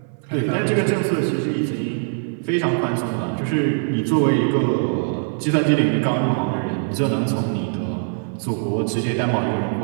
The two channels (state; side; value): silent; left; 61 dB below the other